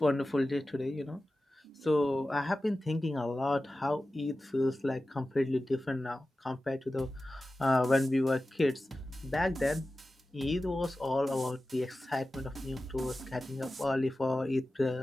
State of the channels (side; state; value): both; normal; correlation 0.95